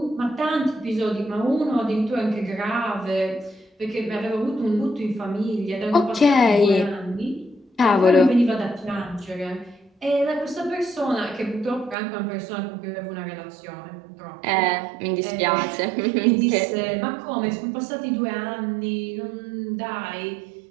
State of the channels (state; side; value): drops out; left; at 12.0 s